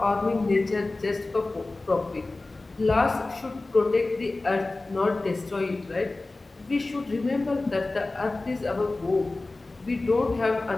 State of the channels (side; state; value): right; quieter; 3.1 dB